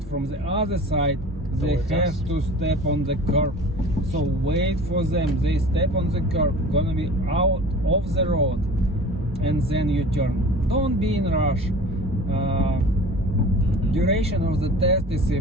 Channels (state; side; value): normal; both; correlation 0.41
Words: from the other side, they Towards have us. to step on the curb. So wait for them. They step on the curb, gonna be out of the road, and then you turn. Don't be in rush. Duration of the test is